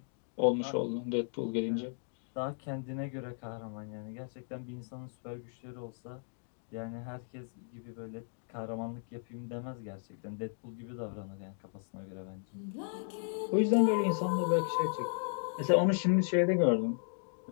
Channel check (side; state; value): right; silent; digital silence